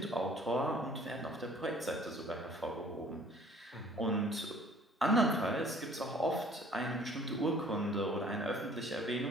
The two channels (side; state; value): both; normal; correlation 0.54